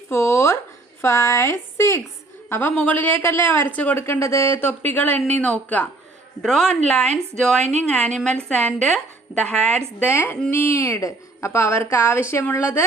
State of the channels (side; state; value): left; quieter; 3.1 dB